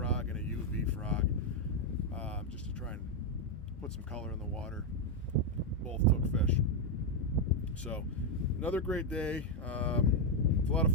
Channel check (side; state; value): both; normal; correlation 0.02